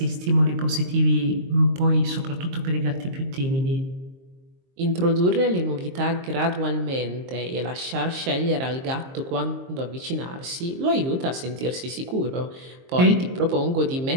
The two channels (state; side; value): late; left; 23 ms